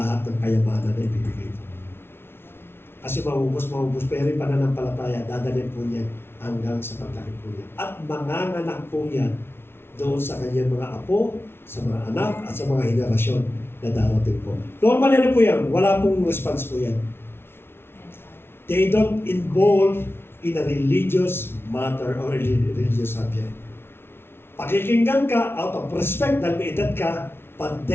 ng kayamanan na ibibigay po. Kasi maubos, pero yung pananampalataya, dadalhin po niya hanggang sa paglaki po niya. At manganganak po yan doon sa kanyang mga apo, sa mga anak, at sa mga henerasyon na darating po. Normal yan po yan. Wala pong response po yan. They don't involve in a religious matter or religious subject. Pakikinggan ka out of respect dahil may edad ka, but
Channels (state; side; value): late; right; 0.12 ms